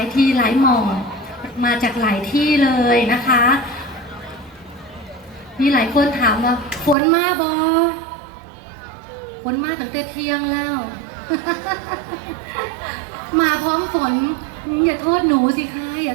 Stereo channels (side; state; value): left; drops out; at 7.0 s